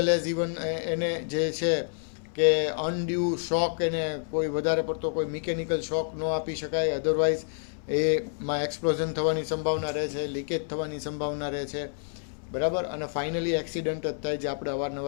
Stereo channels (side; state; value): right; silent; 59 dB below the other